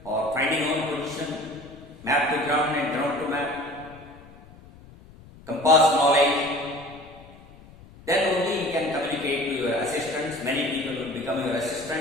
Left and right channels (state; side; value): noise; left; rumble, 22 dB below the sound